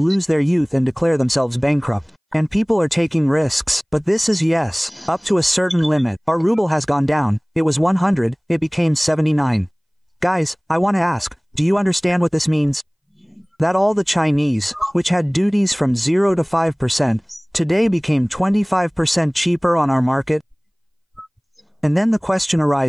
lose their youth and declare themselves bankrupt. And people are taking risks, but this is yes, up to a certain limit. Our ruble has gone down, it was 100, it became 79. Guys, I want to ask, do you understand what this means? That all the Chinese, which had duties from 0 to 5%, today became 25% cheaper on our market? And then the question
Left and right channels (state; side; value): identical; both; correlation 1.00